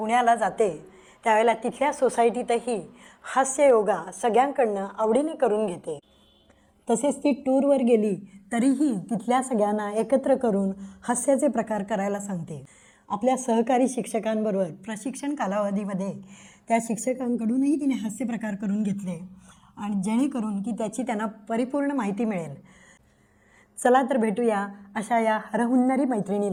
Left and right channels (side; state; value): both; identical; correlation 1.00